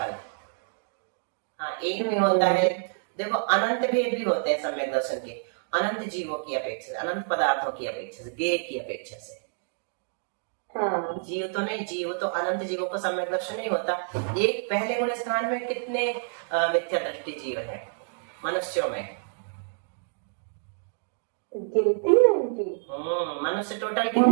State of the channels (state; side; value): silent; left; digital silence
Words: हाँ, एक भी होता है, देखो अनंत भेद भी होते हैं सम्यक दर्शन के। अनंत जीवों की अपेक्षा से, अनंत पदार्थों की अपेक्षा से, गेय की अपेक्षा से। जीव तो नहीं, जीव तो अनंत जीवों को सम्यक दर्शन नहीं होता। एक पहले गुण स्थान में कितने मिथ्या दृष्टि जीव है मनुष्यों में? गिनती है उनकी। मनुष्य टोटल